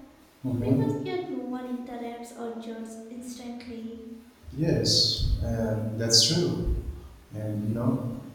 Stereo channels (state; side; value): identical; both; correlation 1.00